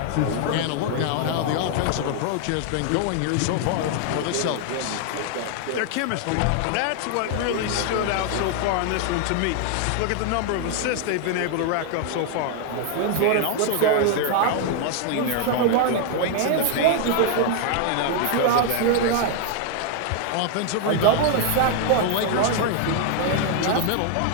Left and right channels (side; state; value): both; different; correlation 0.00